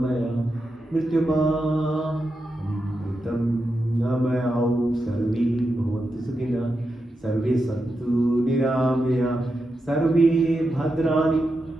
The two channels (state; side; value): normal; both; correlation 0.88